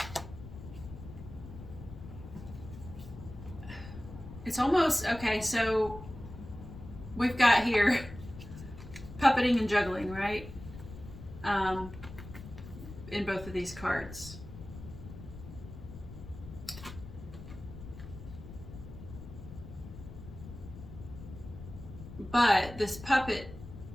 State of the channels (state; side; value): noise; left; rumble, 13 dB below the sound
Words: It's almost, okay, so we've got here puppeting and juggling, right? In both of these cards. But this